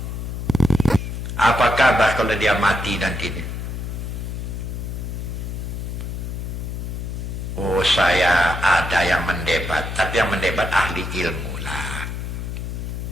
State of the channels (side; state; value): left; noise; hum, 5 dB below the sound